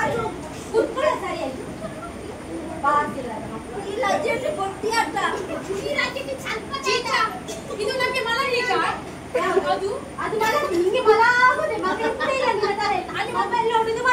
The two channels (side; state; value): both; identical; correlation 1.00